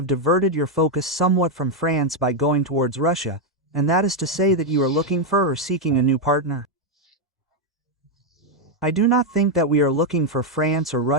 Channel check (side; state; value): both; normal; correlation 0.02